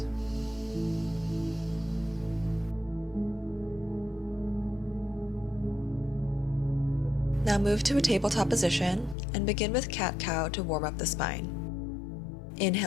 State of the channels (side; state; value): right; drops out; at 9.2 s